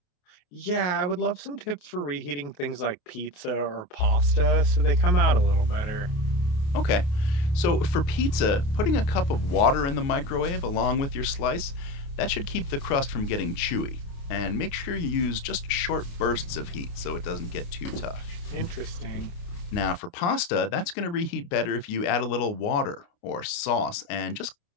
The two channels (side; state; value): right; late; 29 ms